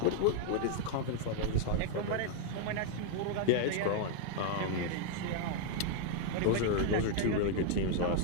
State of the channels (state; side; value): different; both; correlation 0.00